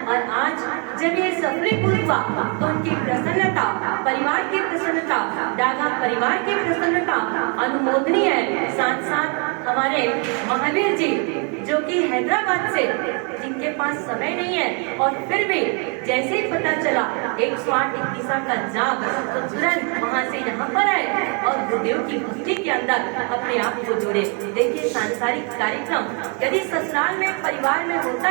और आज जब ये सफलीभूत हुआ तो उनकी प्रसन्नता, परिवार की प्रसन्नता, डागा परिवार की प्रसन्नता अनुमोदनीय है। साथ साथ हमारे महावीर जी जो कि हैदराबाद से, जिनके पास समय नहीं है, और फिर भी जैसे ही पता चला 108 21वां का जाप, तो तुरंत वहाँ से यहाँ पर आए और गुरुदेव की भक्ति के अंदर अपने आप को जोड़े। देखिए, सांसारिक कार्यक्रम यदि ससुराल में, परिवार में होता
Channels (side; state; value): left; quieter; 36.5 dB